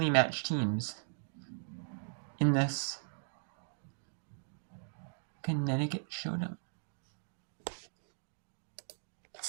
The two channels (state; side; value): silent; left; digital silence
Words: matched teams in this Connecticut showdown.